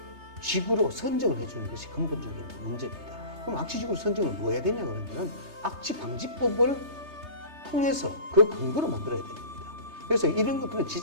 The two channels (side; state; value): left; late; 3.3 ms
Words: 지구로 선정을 해주는 것이 근본적인 문제입니다. 그럼 악취 지구로 선정을 뭐 해야 되냐 그러면은 악취 방지법을 통해서 그 근거로 만들어야 됩니다. 그래서 이런 것들은